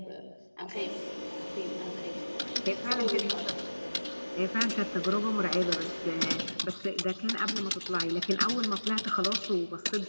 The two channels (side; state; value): both; inverted; correlation -1.00